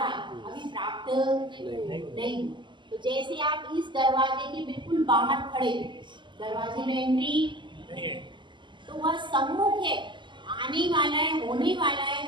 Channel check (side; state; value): left; late; 0.23 ms